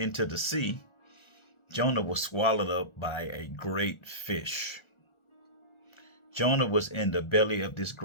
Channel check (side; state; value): right; late; 1.4 ms